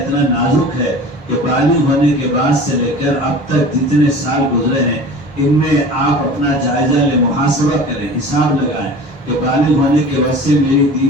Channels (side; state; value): both; normal; correlation 0.39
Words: نازک ہے کہ بالغ ہونے کے بعد سے لے کر اب تک جتنے سال گزرے ہیں ان میں آپ اپنا جائزہ لیں، محاسبہ کریں، حساب لگائیں کہ بالغ ہونے کے وجہ سے میری